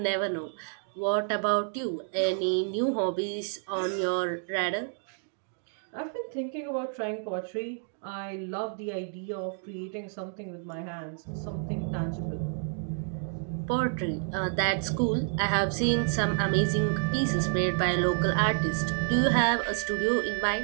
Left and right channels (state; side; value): silent; left; 58 dB below the other